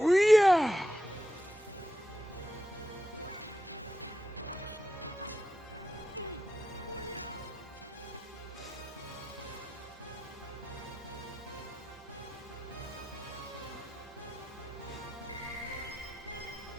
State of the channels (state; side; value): normal; both; correlation 0.87